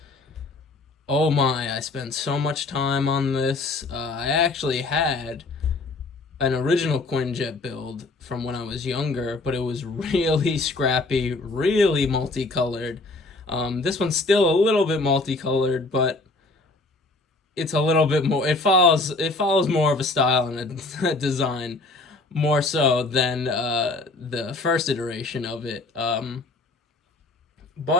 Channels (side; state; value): right; quieter; 3.2 dB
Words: Oh my, I spent so much time on this. I actually had an original Quinjet build from when I was younger, but it was really scrappy, really multicolored. This one's still a little bit multicolored, but it's a little bit more. It follows more of a style and a design, more so than the first iteration of it.